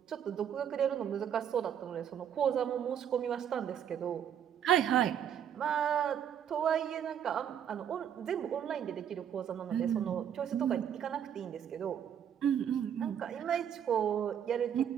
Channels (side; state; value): left; quieter; 9.1 dB